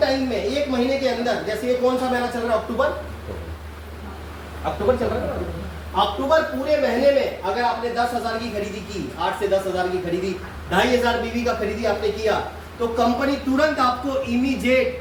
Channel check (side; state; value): both; identical; correlation 1.00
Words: में एक महीने के अंदर, जैसे ये कौन सा महीना चल रहा है? अक्टूबर चल रहा है। अक्टूबर पूरे महीने में अगर आपने 10,000 की खरीदी की, 8 से 10,000 की खरीदी, 2,500 बीवी का खरीदी आपने किया तो कंपनी तुरंत आपको